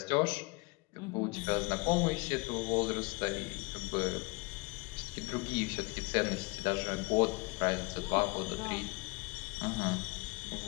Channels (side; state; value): right; quieter; 26.9 dB